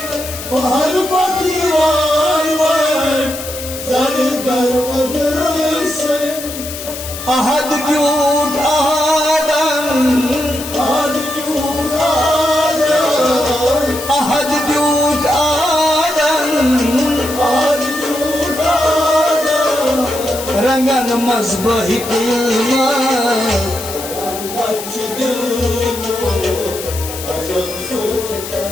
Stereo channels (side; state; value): left; noise; hiss, 10 dB below the sound